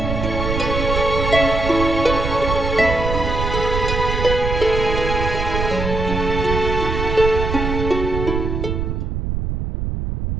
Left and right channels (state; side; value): noise; right; rumble, 2 dB below the sound